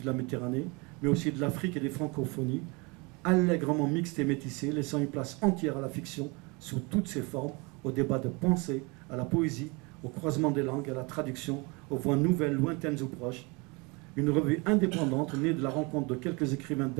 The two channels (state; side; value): quieter; left; 28.3 dB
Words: de la Méditerranée, mais aussi de l'Afrique et des francophonies, allègrement mixte et métissée, laissant une place entière à la fiction sous toutes ses formes, au débat de pensée, à la poésie, au croisement des langues, à la traduction, aux voix nouvelles, lointaines ou proches. Une revue indépendante née de la rencontre de quelques écrivains